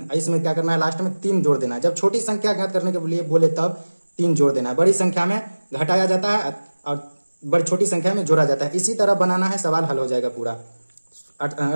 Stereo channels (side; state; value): both; inverted; correlation -1.00